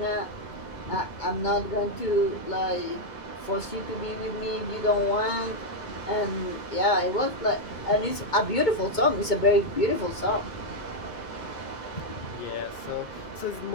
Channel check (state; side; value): late; right; 2.2 ms